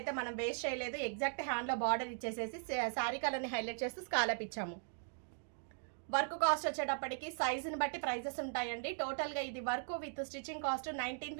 మనం వేస్ట్ చేయలేదు. ఎగ్జాక్ట్ హ్యాండ్లో బార్డర్ ఇచ్చేసేసి శారీ కలర్ని హైలైట్ చేస్తూ స్కాలప్ ఇచ్చాము. వర్క్ కాస్ట్ వచ్చేటప్పటికి సైజుని బట్టి ప్రైజెస్ ఉంటాయండి. టోటల్గా ఇది work with stitching cost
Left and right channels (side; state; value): left; silent; digital silence